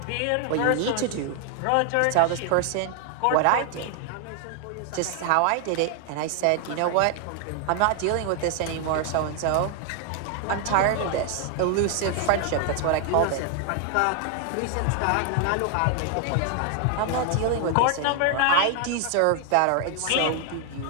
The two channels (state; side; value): different; both; correlation 0.00